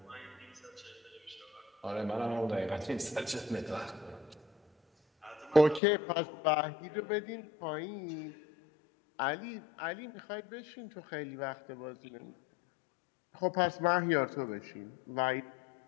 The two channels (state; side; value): drops out; right; at 5.8 s